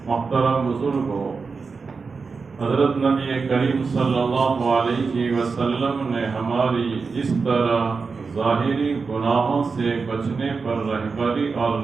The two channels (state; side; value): quieter; left; 4.8 dB